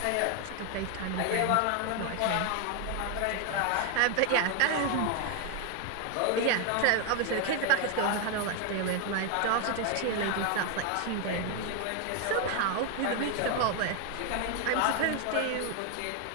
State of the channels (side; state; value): both; different; correlation 0.01